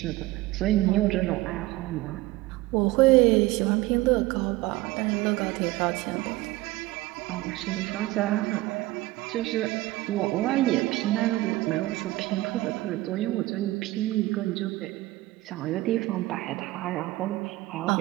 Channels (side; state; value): left; quieter; 18.6 dB